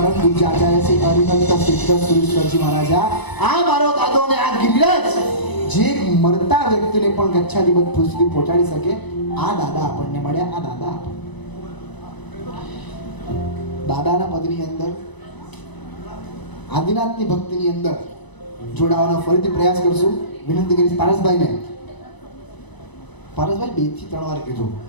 પૂજ્ય આચાર્ય શ્રી હરિભક્ત સિદ્ધ સુરેશ્વરજી મહારાજા, આ મારો દાદો ને આ ગિરિરાજ જે મરતા વ્યક્તિને પણ ગચ્છાધિપતિ પદ સુધી પહોંચાડી શકે, આ દાદા આપણને મળ્યા. આ દાદા દાદાના પદની અંદર, આદિનાથની ભક્તિની અંદર જોડાવાનો ફરીથી પ્રયાસ કરશું. વિનંતી કરીશ પારસભાઈને. પારસભાઈ 2 થી 3 વાર કીધું.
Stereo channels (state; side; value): late; right; 1.0 ms